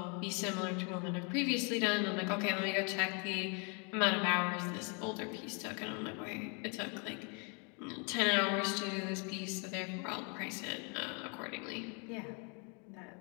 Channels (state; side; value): quieter; right; 35.6 dB